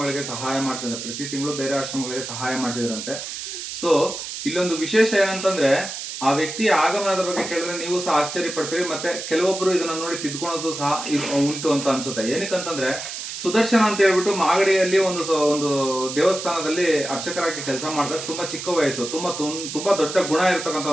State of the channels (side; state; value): right; noise; hiss, 7 dB below the sound